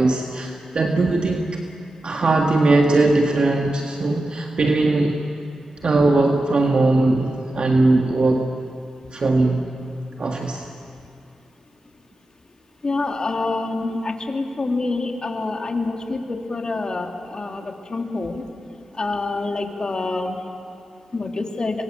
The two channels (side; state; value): both; normal; correlation 0.91